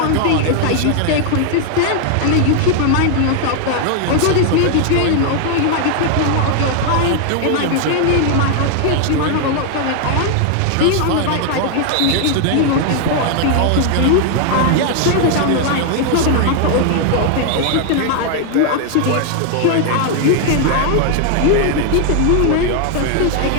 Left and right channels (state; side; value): different; both; correlation 0.00